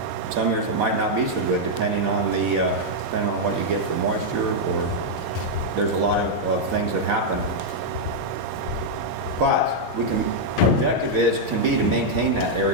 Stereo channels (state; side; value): late; right; 18 ms